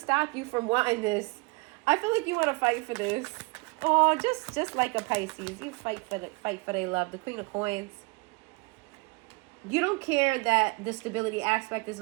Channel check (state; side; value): quieter; left; 28.2 dB